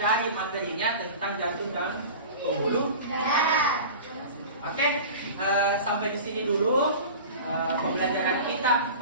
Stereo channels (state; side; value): inverted; both; correlation -0.36